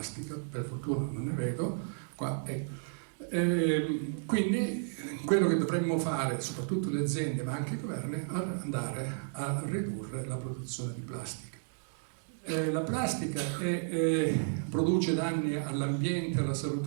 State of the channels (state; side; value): silent; left; digital silence